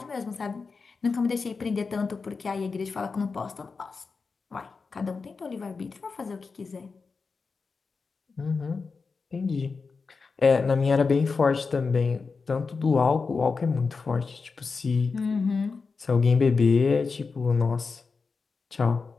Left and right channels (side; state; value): right; quieter; 4.7 dB